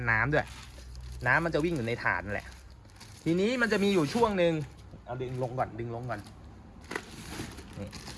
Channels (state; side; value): identical; both; correlation 1.00